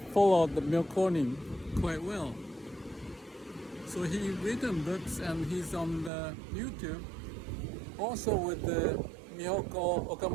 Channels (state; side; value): drops out; left; at 6.1 s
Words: followed the Myōkōnin quite well. So he written books, and he's on the YouTube, also with the Miyoko